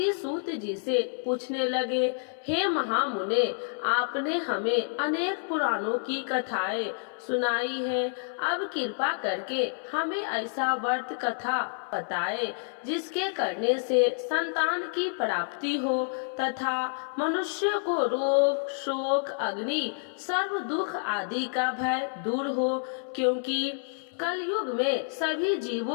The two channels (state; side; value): silent; right; 59 dB below the other